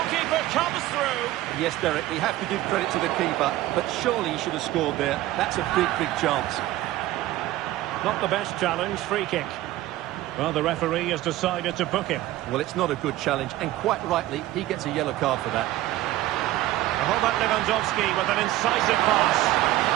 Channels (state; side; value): quieter; left; 15.7 dB